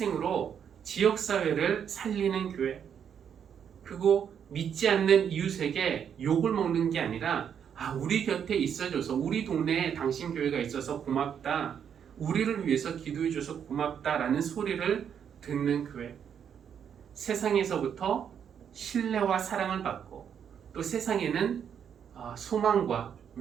지역사회를 살리는 교회, 그리고 믿지 않는 이웃에게 욕을 먹는 게 아니라 우리 곁에 있어줘서, 우리 동네에 당신 교회가 있어서 고맙다, 우리를 위해서 기도해줘서 고맙다라는 소리를 듣는 교회, 세상에서부터 신뢰와 사랑을 받고 또 세상에는 소망과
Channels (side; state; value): left; quieter; 8.1 dB